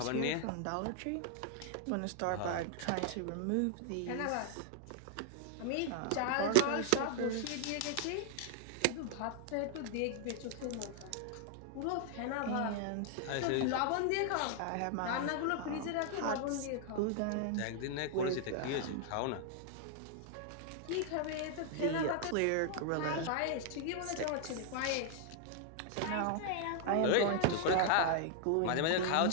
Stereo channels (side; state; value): both; different; correlation 0.00